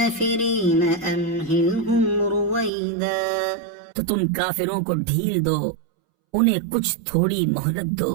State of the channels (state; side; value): drops out; left; at 2.7 s